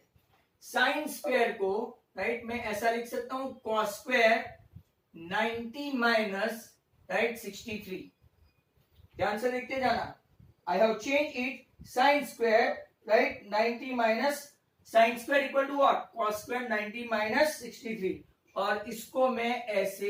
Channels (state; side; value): identical; both; correlation 1.00